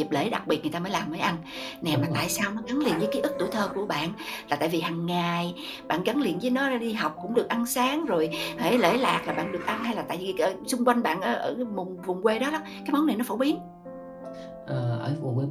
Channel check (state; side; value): identical; both; correlation 1.00